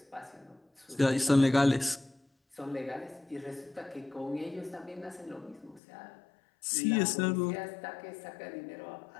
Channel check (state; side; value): drops out; right; at 5.8 s